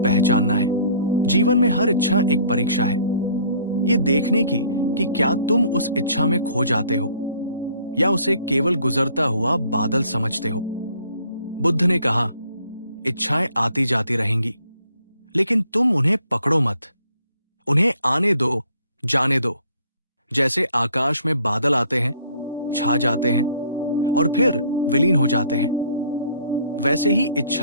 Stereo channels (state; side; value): inverted; both; correlation -0.58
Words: है। जीवन में हर इच्छा एक परीक्षा है, ये देखने की कि क्या तुम उस इच्छा में खो जाते हो या उसे केवल गुजरता हुआ बादल समझते हो। बुद्ध ने कहा इच्छाएं आती जाती रहेंगी, लेकिन तुम उन्हें पकड़ो मत। उन्हें आने दो, जाने दो। जैसे आकाश में बादल आते हैं, छा जाते हैं और फिर विलीन हो जाते हैं, वैसे ही